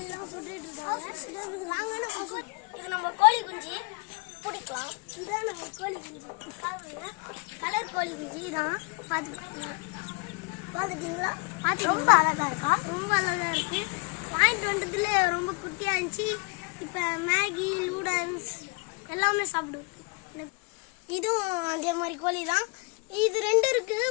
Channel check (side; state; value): right; quieter; 31.4 dB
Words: சுட்டுட்டு இருக்காங்க. நாங்கள் இது நம்ம கோழி குஞ்சு பிடிக்கலாம். இதான் நம்ம கோழி குஞ்சு. கலர் கோழி குஞ்சு தான். பார்த்துட்டீங்களா? ரொம்ப அழகா இருக்கா? ரொம்ப அழகா இருக்கு. வாங்கிட்டு வந்ததுல ரொம்ப குட்டியா இருந்துச்சு. இப்போ மேகி நூடல்ஸ் எல்லாமே சாப்பிடுவோம். இதுவும் அதே மாதிரி கோழி தான். இது ரெண்டு இருக்குது.